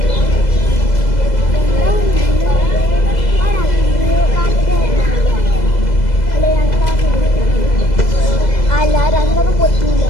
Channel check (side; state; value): right; late; 2.0 ms